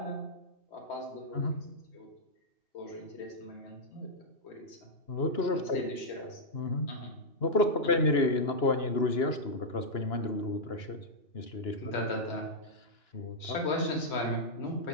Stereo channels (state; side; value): late; right; 2.9 ms